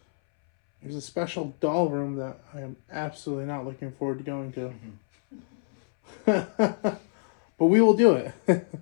There's a special doll room that I am absolutely not looking forward to going to. But we will do it. Brown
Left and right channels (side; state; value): right; silent; 61 dB below the other